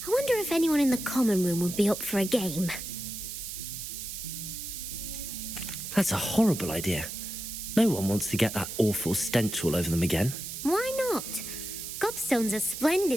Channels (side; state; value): right; noise; hiss, 7 dB below the sound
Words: I wonder if anyone in the common room would be up for a game. That's a horrible idea. No one wants to get that awful stench all over them again. Why not? Gobstones are